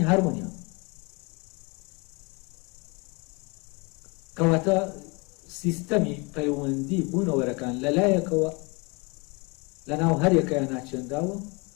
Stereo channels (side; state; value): right; quieter; 29.1 dB